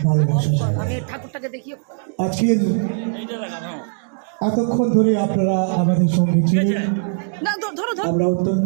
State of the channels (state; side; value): silent; left; digital silence